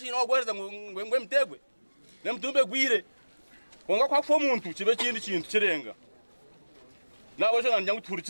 ogwereza ngwe mtegwe nemtumbe gwire konga kwa kufa umuntu kibe kindi kintu kirenga nabo cyo nanjye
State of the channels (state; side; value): inverted; both; correlation -1.00